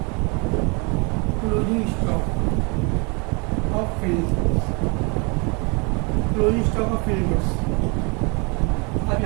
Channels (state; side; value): quieter; left; 31.5 dB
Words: closing stock of finish goods. Closing stock of finish goods